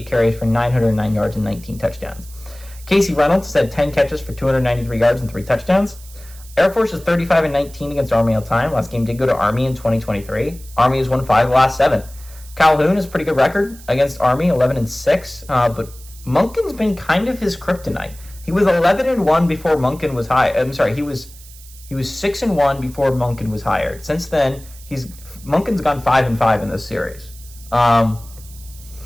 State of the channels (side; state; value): right; noise; hiss, 21 dB below the sound